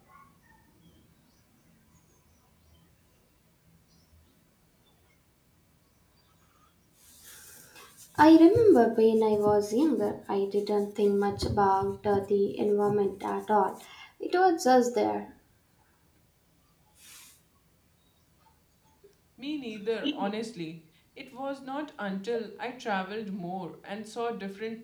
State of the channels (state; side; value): identical; both; correlation 1.00